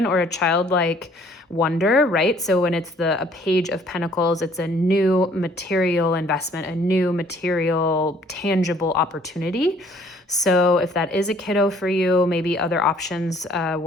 or a childlike wonder, right? So when it's a page of pentacles, it's a new material investment, a new material, tangible opportunity. So if that is a kiddo for you, maybe other options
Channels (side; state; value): both; normal; correlation 0.59